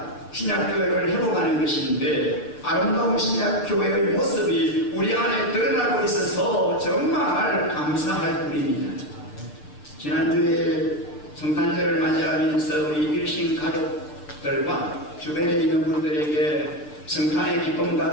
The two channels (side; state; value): right; late; 6.8 ms